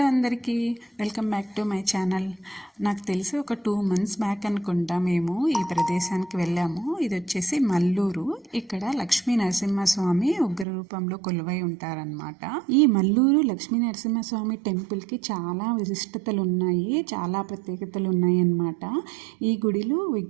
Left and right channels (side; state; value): left; drops out; at 10.7 s